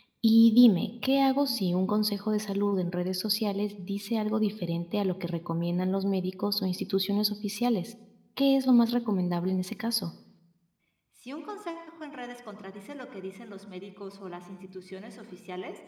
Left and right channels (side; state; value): both; identical; correlation 1.00